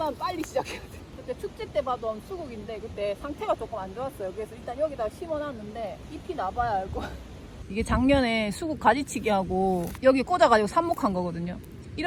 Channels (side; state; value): both; identical; correlation 1.00